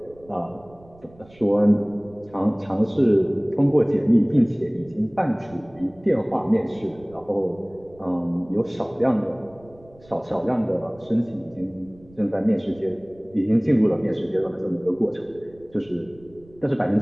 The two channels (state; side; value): noise; right; rumble, 26 dB below the sound